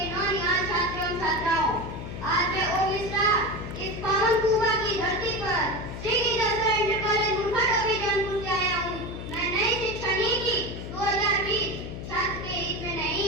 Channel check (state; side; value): noise; left; hum, 8 dB below the sound